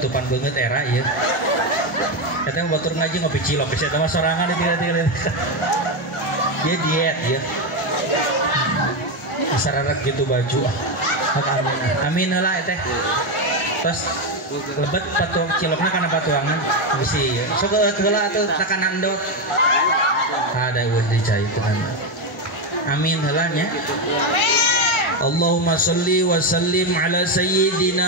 beungeut era ieu. Eta mah batur ngaji ngopi cilok bisi eta mah sorangan di tiga-tiga. Dia diet ya. Sararak gitu baju. Hak amin. Amin heula eta. Terus lebet patuang cilokna kana patuangan bisi. Sok heula atuh takanan endot. Ada wis dicai tenan. Amin helanya. Allahumma sholli wa sallim ala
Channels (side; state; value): both; normal; correlation 0.09